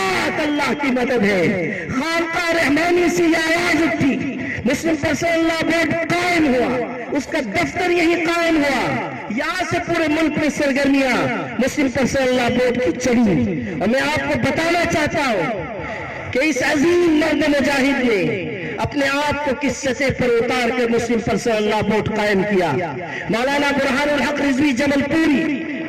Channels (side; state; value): both; identical; correlation 1.00